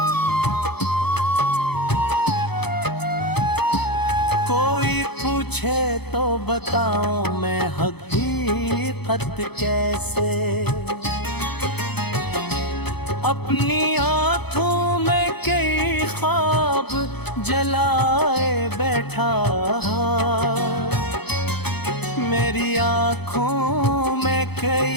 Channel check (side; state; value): right; late; 0.98 ms